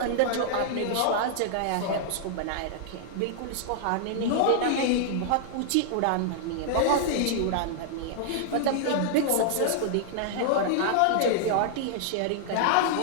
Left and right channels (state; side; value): different; both; correlation -0.01